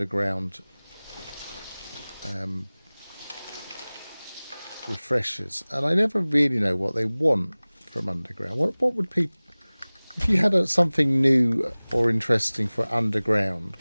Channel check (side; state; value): both; inverted; correlation -1.00